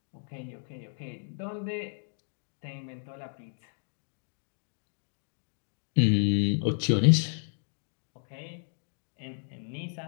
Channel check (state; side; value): silent; right; 56 dB below the other